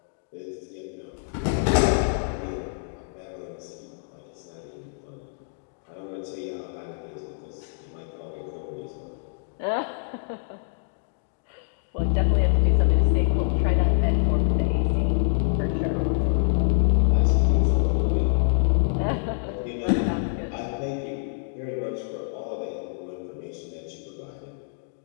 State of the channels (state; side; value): silent; right; digital silence